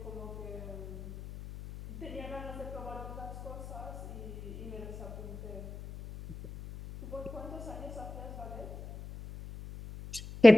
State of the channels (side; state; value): left; noise; hum, 12 dB below the sound